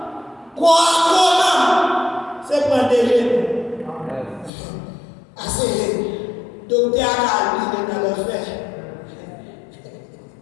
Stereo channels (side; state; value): right; drops out; at 4.5 s